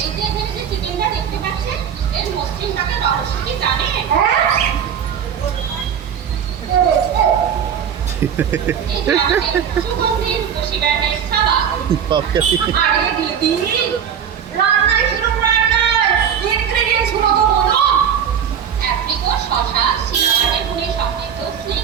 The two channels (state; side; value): quieter; left; 8.2 dB